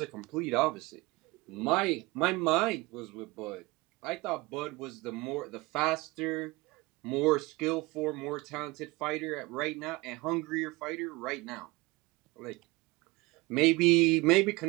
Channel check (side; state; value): left; quieter; 22.8 dB